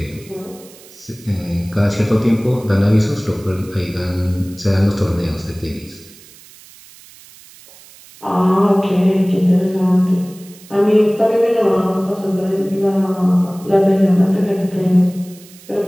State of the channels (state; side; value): noise; right; hiss, 22 dB below the sound